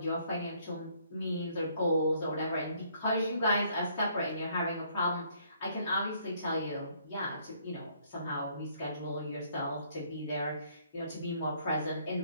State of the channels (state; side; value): inverted; both; correlation -0.65